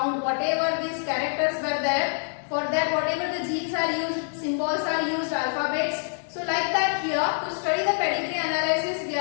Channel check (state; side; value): silent; right; digital silence